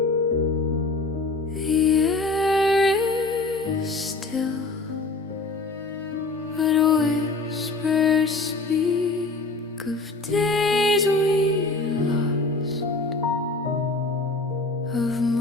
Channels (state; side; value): quieter; right; 3.4 dB